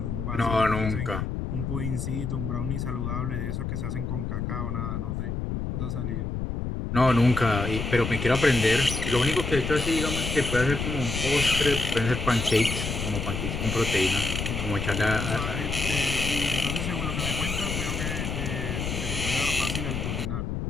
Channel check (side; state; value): left; noise; rumble, 3 dB below the sound